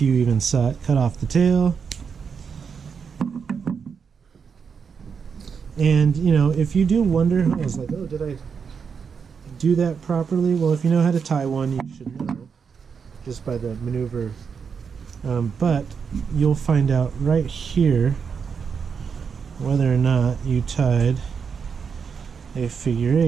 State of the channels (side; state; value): left; quieter; 6.2 dB